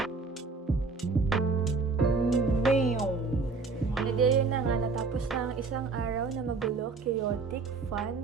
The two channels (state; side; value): quieter; left; 4.2 dB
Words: Yun na nga, natapos na ang isang araw na magulo, chaotic, fun,